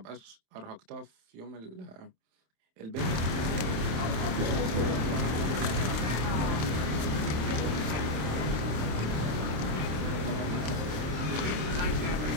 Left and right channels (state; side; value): late; left; 27 ms